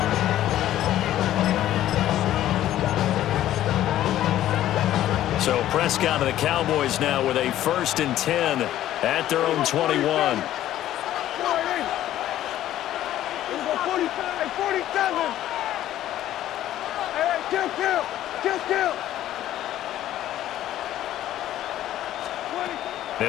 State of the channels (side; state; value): right; quieter; 12.9 dB